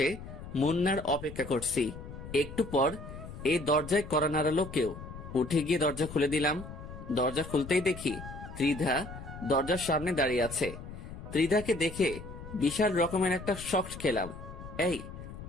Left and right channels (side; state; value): left; noise; rumble, 12 dB below the sound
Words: মুন্নার অপেক্ষা করছি। একটু পর এই দরজায় কড়া নাড়ালো কেউ। উঠে গিয়ে দরজা খুলে দিলাম। দরজা খুলতেই দেখি ত্রিধা দরজার সামনে দাঁড়িয়ে আছে। ত্রিধাকে দেখে বিশাল রকমের একটা শক খেলাম। এই,